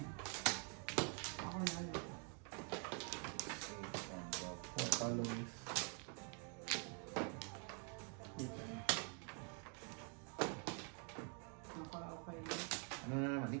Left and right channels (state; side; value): quieter; left; 39.7 dB